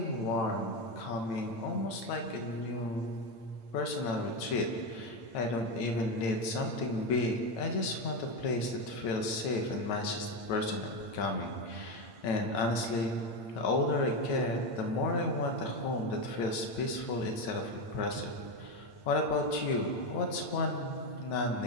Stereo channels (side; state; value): right; late; 8.8 ms